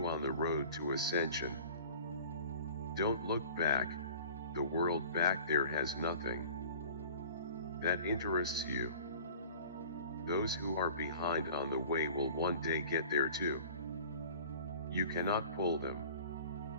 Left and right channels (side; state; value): both; inverted; correlation -0.44